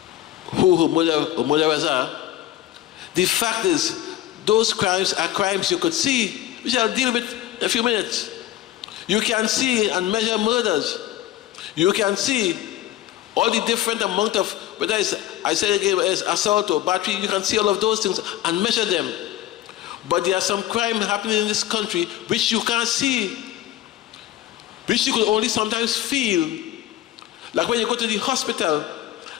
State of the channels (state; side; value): quieter; right; 13.5 dB